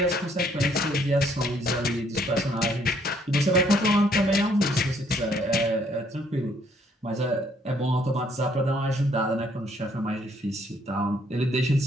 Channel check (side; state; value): both; normal; correlation 0.66